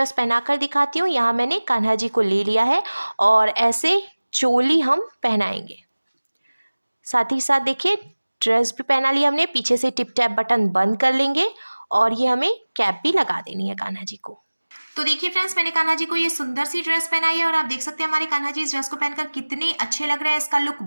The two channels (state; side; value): inverted; both; correlation -1.00